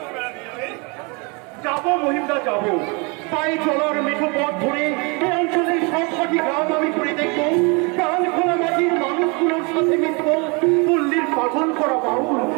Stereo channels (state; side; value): quieter; left; 30.8 dB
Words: বেড়াতে যাবে? যাবো মহিন্দা যাবো, পায়ে চলার মেঠো পথ ধরে এই অঞ্চলের সবকটি গ্রাম আমি ঘুরে দেখবো। প্রাণ খোলা মাটির মানুষগুলোর সাথে মিশবো। পল্লীর পাগল করা বাউল